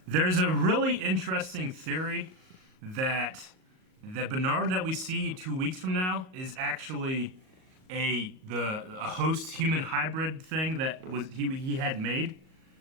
There's a really interesting theory that the Bernard that we see 2 weeks from now is actually a host human hybrid thing that was he had made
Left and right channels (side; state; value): left; late; 38 ms